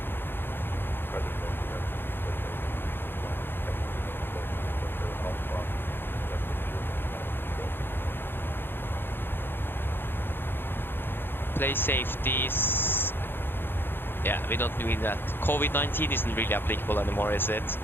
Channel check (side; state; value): right; late; 0.10 ms